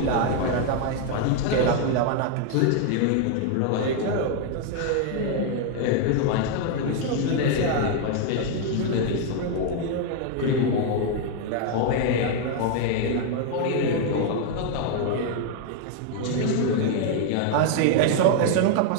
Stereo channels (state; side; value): different; both; correlation 0.00